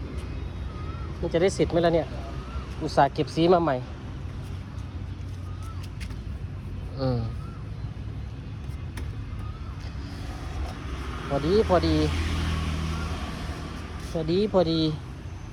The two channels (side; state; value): both; identical; correlation 1.00